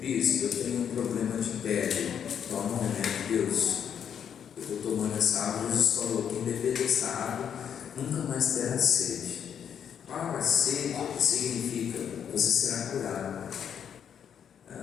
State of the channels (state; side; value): quieter; right; 8.3 dB